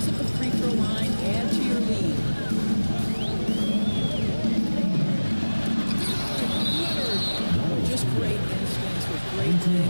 at the free throw line, add to your lead. Leonard! Just great instincts with great thing.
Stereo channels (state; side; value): inverted; both; correlation -1.00